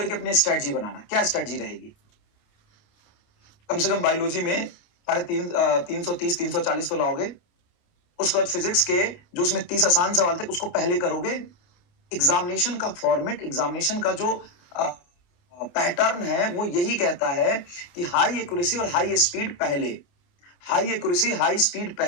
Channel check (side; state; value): right; late; 28 ms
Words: अपनी स्ट्रेटजी बनाना। क्या स्ट्रेटजी रहेगी? कम से कम बायोलॉजी में 330 340 तो लाओगे। उसके बाद फिजिक्स के जो उसमें 30 आसान सवाल थे, उसको पहले करोगे। एग्जामिनेशन का फॉर्मेट, एग्जामिनेशन का जो पैटर्न है, वो यही कहता है कि हाई एक्यूरेसी और हाई स्पीड पहले, हाई एक्यूरेसी हाई स्पीड